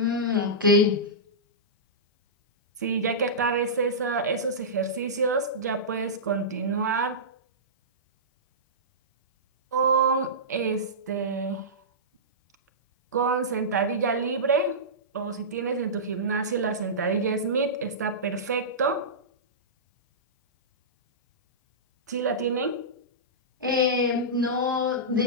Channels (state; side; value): normal; both; correlation -0.17